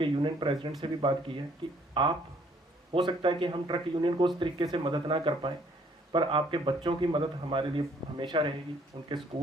यूनियन प्रेसिडेंट से भी बात की है कि आप, हो सकता है कि हम ट्रक यूनियन को उस तरीके से मदद ना कर पाएँ, पर आपके बच्चों की मदद हमारे लिए हमेशा रहेगी। उनके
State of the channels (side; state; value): both; normal; correlation 0.63